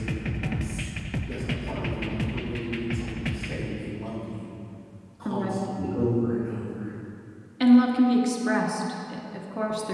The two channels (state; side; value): identical; both; correlation 1.00